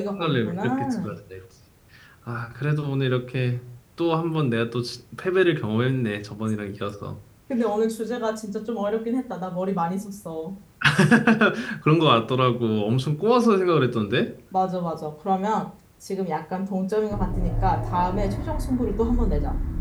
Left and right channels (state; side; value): identical; both; correlation 1.00